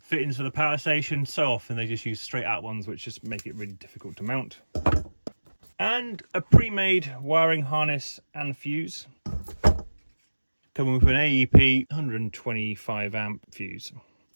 fittings for the power station. So often they just use straight out ones, which just make it really difficult to mount. And a pre-made wiring harness and fuse, coming with an AEP 125 amp fuse.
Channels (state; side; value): inverted; both; correlation -1.00